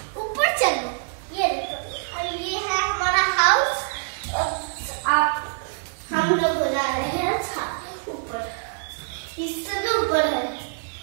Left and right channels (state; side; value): silent; left; digital silence